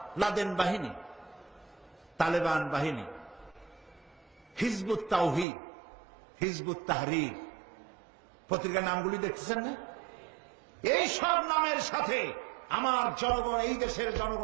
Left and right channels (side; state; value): left; drops out; at 5.5 s